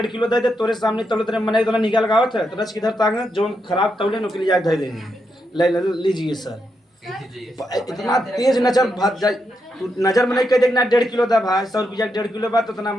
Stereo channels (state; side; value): normal; both; correlation 0.82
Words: किलो दे दे तोरे सामने तौलत रहे मने निकाल लगावत है तो रच किधर तांग जो खराब तौले नुकली जाए दे देंगे। लीजिए सर, इतना तेज नजर भाग जाए, तू नजर में नहीं कह देखना 1.5 किलो था भाई 100 रुपया 1.5 किलो बात तो इतना